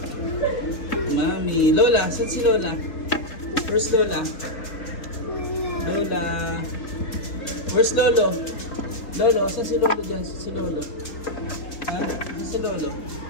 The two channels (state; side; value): late; right; 3.8 ms